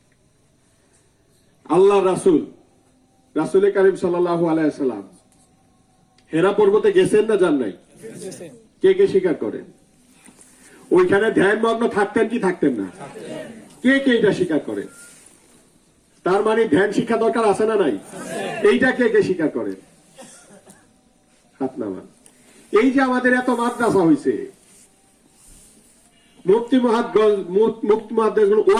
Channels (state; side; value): identical; both; correlation 1.00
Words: আল্লাহ রাসূল কারীম সাল্লাল্লাহু আলাইহি ওয়াসাল্লাম হেরা পর্বতে গেছেন না যান নাই? কে কে স্বীকার করেন? ওইখানে ধ্যানমগ্ন থাকতেন কি থাকতেন না? কে কে এটা স্বীকার করেন? তার মানে ধ্যান শিক্ষা দরকার আছে না নাই? এইটা কে কে স্বীকার করেন? হাত নামান। এই যে আমাদের এত মাদ্রাসা হয়েছে, মুফতি মুহাদ্দিস